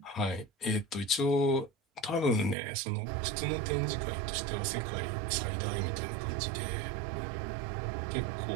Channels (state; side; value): drops out; left; at 2.6 s